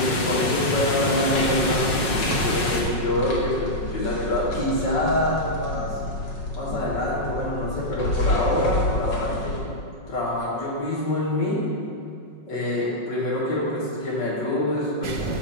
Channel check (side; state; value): right; late; 5.4 ms